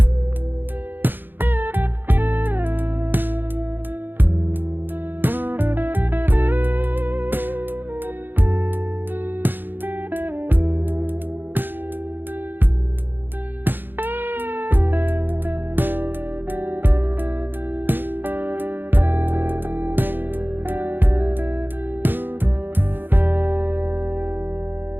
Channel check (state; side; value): late; left; 0.094 ms